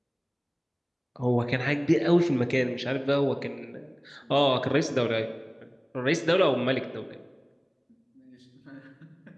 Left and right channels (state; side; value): identical; both; correlation 1.00